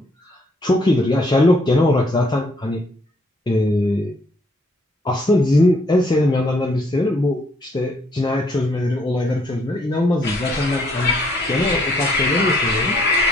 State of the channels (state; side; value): normal; both; correlation 0.67